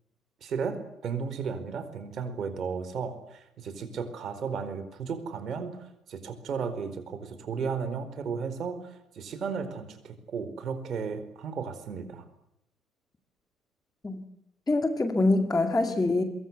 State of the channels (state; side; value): normal; both; correlation 0.78